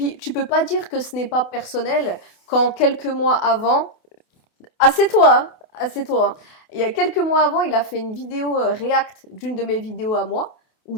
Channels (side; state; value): right; late; 28 ms